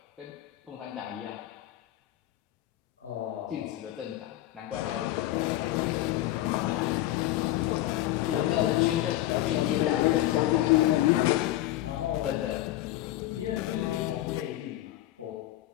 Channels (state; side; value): quieter; right; 14.9 dB